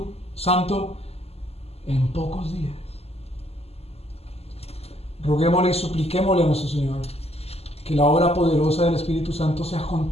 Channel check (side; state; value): right; late; 0.29 ms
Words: Santo en pocos días. Roguémosle y supliquémosle a nuestro Señor que la obra poderosa del Espíritu Santo sea